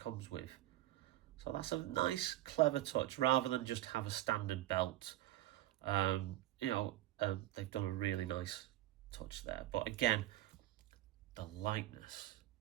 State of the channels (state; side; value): quieter; left; 15.2 dB